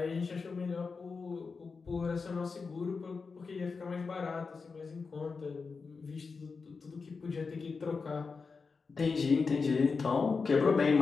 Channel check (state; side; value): quieter; right; 4.8 dB